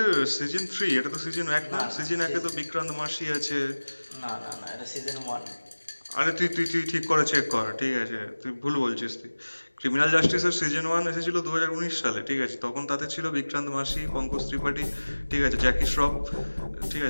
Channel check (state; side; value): inverted; both; correlation -1.00